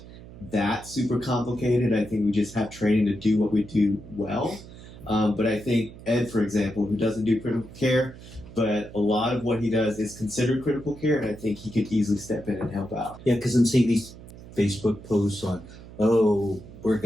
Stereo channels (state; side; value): noise; right; hum, 17 dB below the sound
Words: that super complicated. I think we just have training to do what we do well. But I think Ed, for example, who doesn't do critical care, but a lot of what he does is considered critical care, and I think he could easily step in and help out. Yeah, because I'm seeing these Facebook posts on, we're